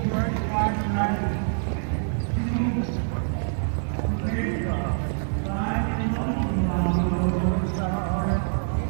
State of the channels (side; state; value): left; silent; 61 dB below the other